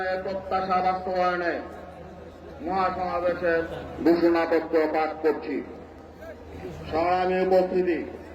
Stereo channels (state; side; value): identical; both; correlation 1.00